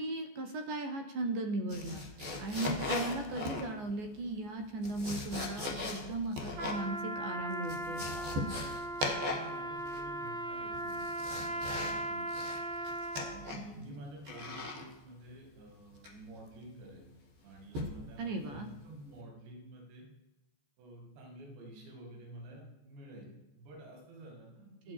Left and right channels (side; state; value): left; late; 14 ms